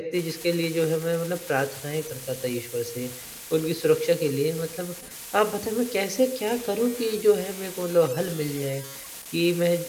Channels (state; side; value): identical; both; correlation 1.00